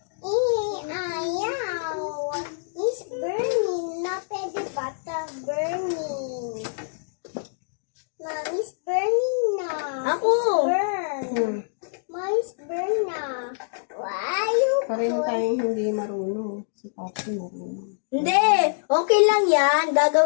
Ayaw. It's burning. Not pwede bata burning. Mommy's burning na. Ako. Burn. Mommy's burn na. Why you Pareho tayong hindi marunong. Si Papi marunong. Hindi, okay lang yan.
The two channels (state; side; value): silent; right; digital silence